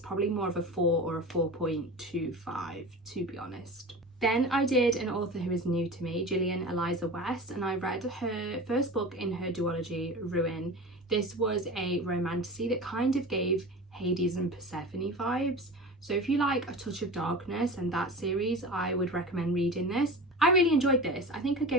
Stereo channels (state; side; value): normal; both; correlation 0.32